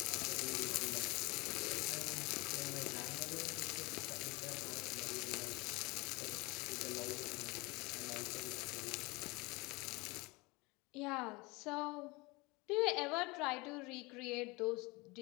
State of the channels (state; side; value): quieter; right; 24.8 dB